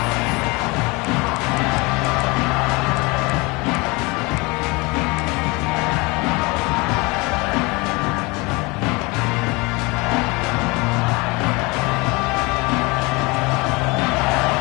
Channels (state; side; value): quieter; right; 25.7 dB